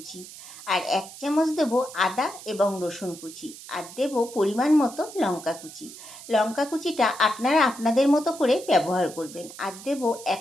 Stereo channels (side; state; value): right; noise; hiss, 15 dB below the sound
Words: আর 1 চামচ দেবো আদা এবং রসুন কুচি, আর দেবো পরিমাণ মতো লঙ্কা কুচি। লঙ্কা কুচিটা আপনারা আপনাদের মতো করে ব্যবহার করবেন। আর দেবো